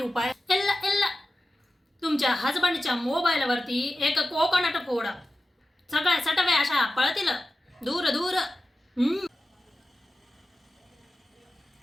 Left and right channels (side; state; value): both; normal; correlation 0.93